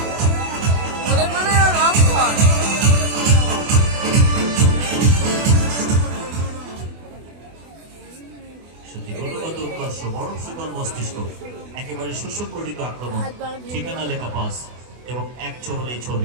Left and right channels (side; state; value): left; late; 24 ms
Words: একেবারে সুসংগঠিত আক্রমণ, ঠিকানা লেখা পাস এবং এক ছবি